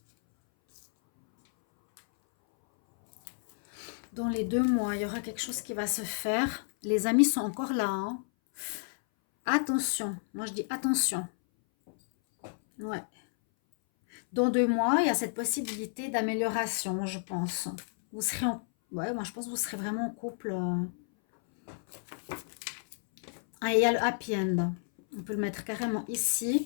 Dans les 2 mois, il y aura quelque chose qui va se faire. Les amis sont encore là. Hein. Attention. Moi, je dis attention. Ouais. Dans 2 mois, il y a cette possibilité d'amélioration, je pense. Vous serez en... Ouais, moi, je pense que vous serez vraiment en couple. Ah, il y a le happy end. On peut le mettre carrément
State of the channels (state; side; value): silent; right; 57 dB below the other